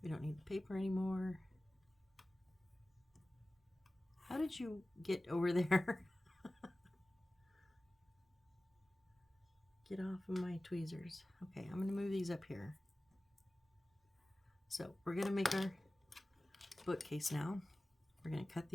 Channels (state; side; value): normal; both; correlation 0.97